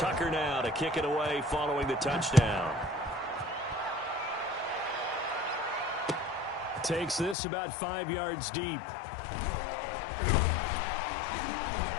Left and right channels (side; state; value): right; drops out; at 7.4 s